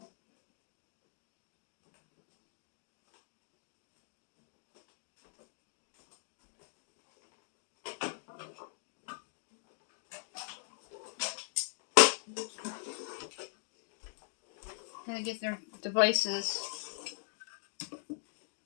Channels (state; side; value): silent; right; digital silence